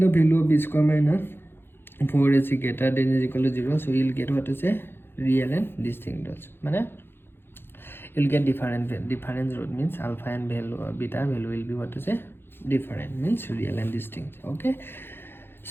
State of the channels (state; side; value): late; right; 0.10 ms